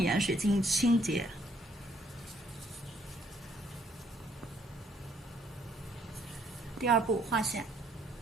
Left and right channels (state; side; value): normal; both; correlation 0.66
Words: 盐水进行清洁。第二步划线。